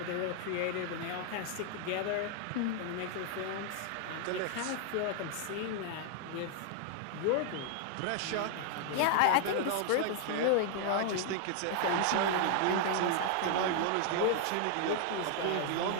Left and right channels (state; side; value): different; both; correlation 0.00